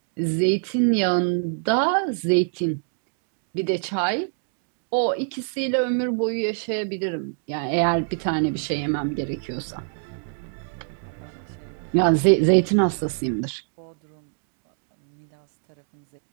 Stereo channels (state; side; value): silent; left; digital silence